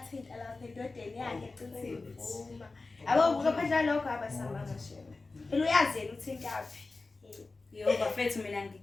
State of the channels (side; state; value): right; quieter; 3.6 dB